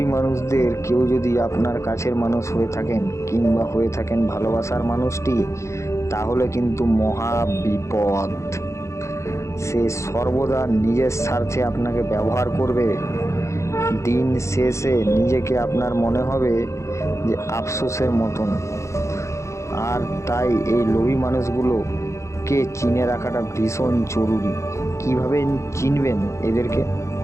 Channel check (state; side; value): late; right; 0.14 ms